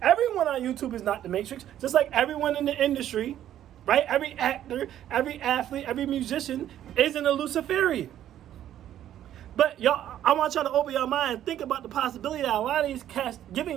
Everyone on YouTube is not the matrix, just like everyone in the industry, right? Every actor, every athlete, every musician isn't a Luciferian. But y'all, I want y'all to open your mind and think about the possibility that a lot of these cats giving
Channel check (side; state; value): left; quieter; 11.5 dB